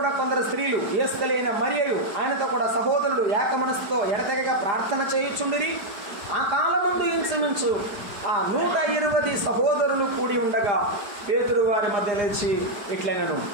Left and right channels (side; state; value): left; late; 4.9 ms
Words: కొందరు స్త్రీలు ఏస్తలైన మరియయు ఆయనతో కూడా సహోదరులు ఏక మనసుతో ఎడతెగగా ప్రార్థన చేయుచుండిరి. ఆ కాలమందు ఇంచుమించు ఆ 120 సహోదరులు కూడి ఉండగా పేతురు వారి మధ్య లేచి ఇట్లైనను.